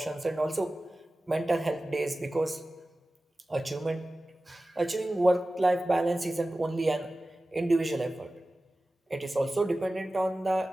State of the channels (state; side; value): normal; both; correlation 0.96